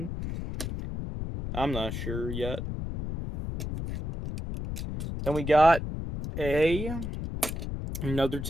I'm not sure yet. Then we got another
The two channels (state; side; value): noise; left; rumble, 5 dB below the sound